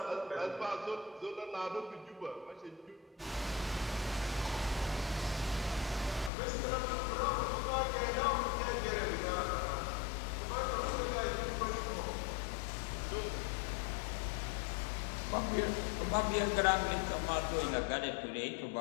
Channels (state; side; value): drops out; right; at 6.3 s